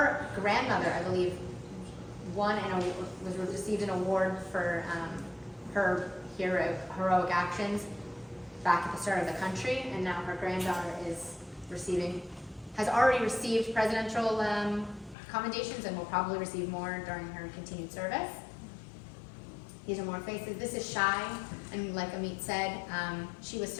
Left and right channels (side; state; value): right; drops out; at 15.2 s